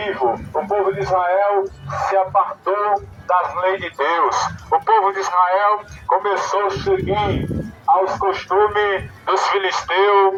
O povo de Israel se apartou das leis de Deus. O povo de Israel começou a seguir aos costumes dos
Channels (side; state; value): both; identical; correlation 1.00